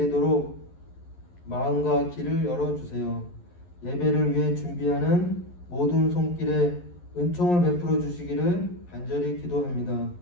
마음과 길을 열어주세요. 예배를 위해 준비하는 모든 손길에 은총을 베풀어 주시기를 간절히 기도합니다.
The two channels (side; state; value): right; late; 11 ms